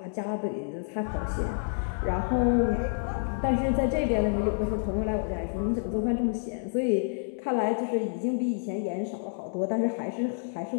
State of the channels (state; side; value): silent; right; digital silence